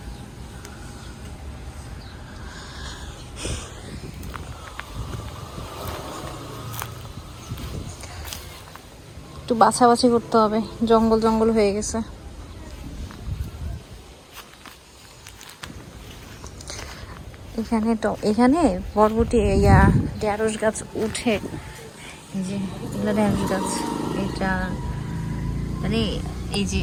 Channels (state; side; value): identical; both; correlation 1.00